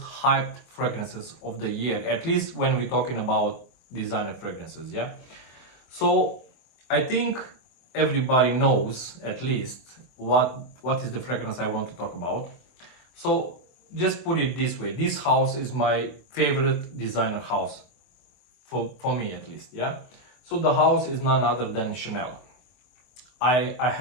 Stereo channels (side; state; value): right; late; 24 ms